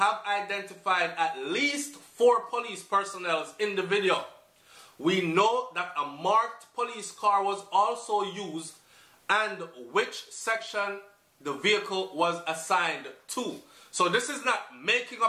identified at least 4 police personnel in the video. We know that a marked police car was also used and which section the vehicle was assigned to. So this is not making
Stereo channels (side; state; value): both; identical; correlation 1.00